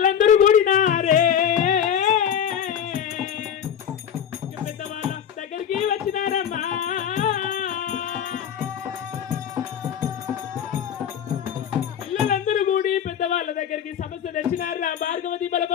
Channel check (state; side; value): quieter; right; 8.8 dB